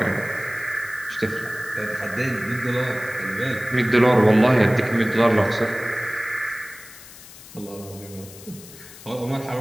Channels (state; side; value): noise; left; hiss, 18 dB below the sound